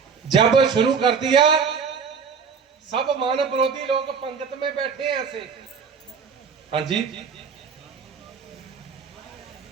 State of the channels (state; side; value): quieter; left; 6.0 dB